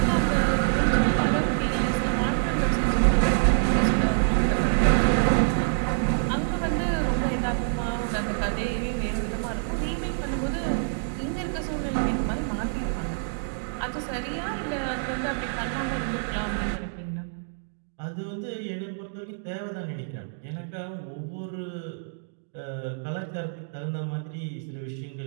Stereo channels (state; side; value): silent; left; digital silence